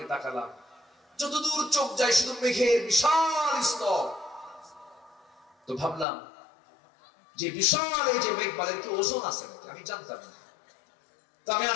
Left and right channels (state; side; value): drops out; right; at 6.1 s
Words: তাকালাম। যতদূর চোখ যায় শুধু মেঘের বিশাল স্তর। তো ভাবলাম যে বিশাল এই যে মেঘমালার কি ওজন আছে নাকি? আমি জানতাম না। তো আমি